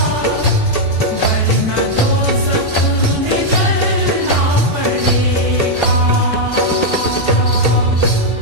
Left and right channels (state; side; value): late; right; 1.8 ms